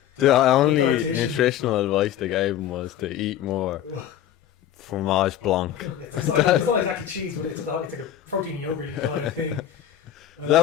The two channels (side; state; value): right; quieter; 10.9 dB